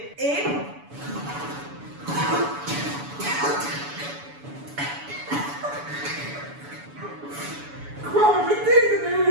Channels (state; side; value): late; left; 7.0 ms